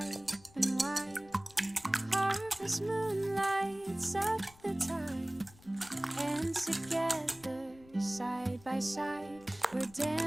and wide. Harvest moon lights up the tide. And together, side by side, we're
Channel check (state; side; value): noise; left; rumble, 25 dB below the sound